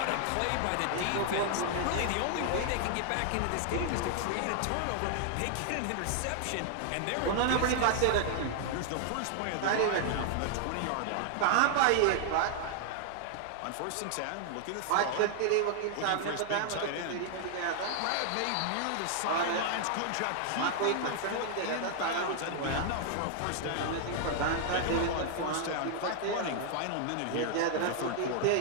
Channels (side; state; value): both; different; correlation 0.00